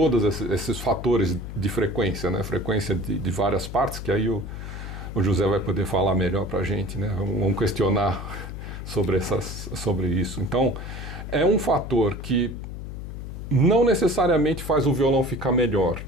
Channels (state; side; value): noise; left; hum, 9 dB below the sound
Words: esses fatores de frequência, né? Frequência de várias partes, que aí o José vai poder falar melhor para a gente, né? Vamos questionar sobre isso. Então, é um fator que não necessariamente faz o violão ficar melhor.